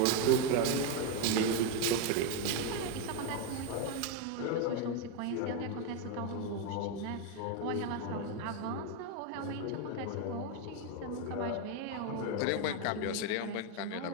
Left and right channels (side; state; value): both; different; correlation 0.02